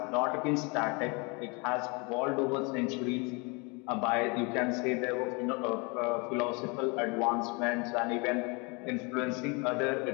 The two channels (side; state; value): right; quieter; 30.3 dB